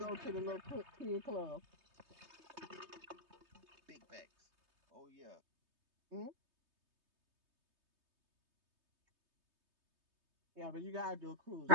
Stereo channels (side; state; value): left; late; 3.2 ms